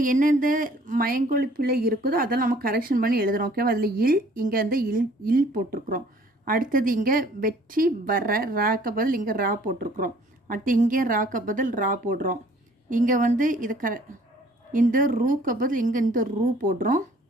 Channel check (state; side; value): normal; both; correlation 0.56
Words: எந்தெந்த மயங்கொலி பிள்ளை இருக்குதோ அதெல்லாம் நம்ம கரெக்ஷன் பண்ணி எழுதுகிறோம். ஓகேவா? அதில் இல், இங்கே இல் போட்டிருக்கிறோம். அடுத்தது இங்கே வெற்றி, வர, ராக்க பதில் இங்கே ரா போட்டிருக்கிறோம். அடுத்து இங்கே ராக்க பதில் ரா போடுறோம். இங்கே இது இந்த ரூக்க பதில் இங்கே இந்த ரூ போடுறோம்.